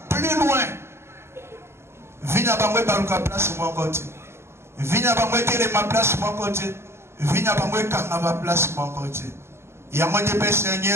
plus loin. Vina bangwe baluka place mon côté. Vina bangwe tele ma place mon côté. Vina bangwe kanga ma place mon côté. Yango de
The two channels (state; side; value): late; left; 0.12 ms